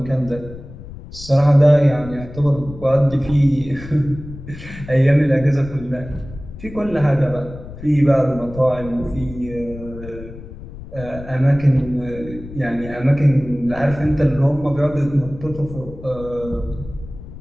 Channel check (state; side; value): noise; left; rumble, 14 dB below the sound